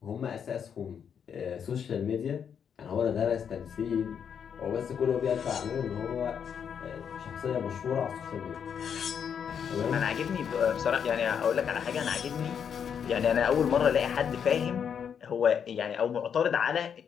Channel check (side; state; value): right; quieter; 7.6 dB